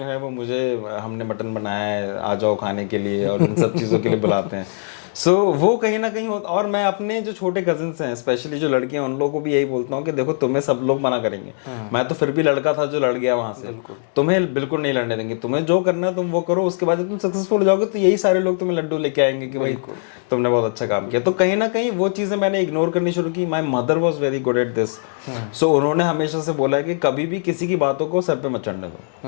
है वो मुझे, हमने मटन बनाया है, आ जाओ खाने के लिए, और इन सब चीज़ों के लिए बुलाते हैं। सो वो कहीं ना कहीं होता। और मैं अपने जो छोटे कजिन्स हैं, स्पेशली जो लड़कियां, उन लोगों को भी यही बोलता हूँ कि देखो, तुम्हें सब लोग मना करेंगे, मैं तो फिर भी लड़का था जो लड़ गया वहां से, तुम्हें बिल्कुल नहीं लड़ने देंगे, तुम्हें जो करना है तुम वो करो, उसके बाद जब तुम सक्सेसफुल हो जाओगे तो यही सारे लोग तुम्हें लड्डू लेके आएंगे कि भाई तुमने बहुत अच्छा काम किया। तो कहीं ना कहीं वो चीज़ें मैंने इग्नोर करनी शुरू की। My mother was very good at this. So उन्होंने हमेशा से बोला है कि कभी भी किसी की बातों को सर पे मत चढ़ने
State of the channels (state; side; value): silent; right; digital silence